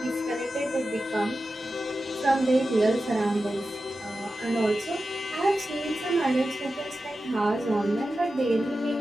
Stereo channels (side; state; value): both; normal; correlation 0.92